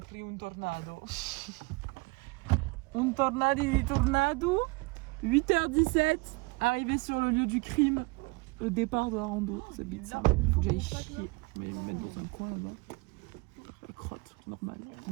un tornado. Un tornado di tornado. 8h17, arrivé sur le lieu du crime. Le départ de la rando, ça bite ça. Faut que j'aille chier. Je vais me mettre dans un coin là-bas. La crotte, normal.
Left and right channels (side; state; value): left; quieter; 27.7 dB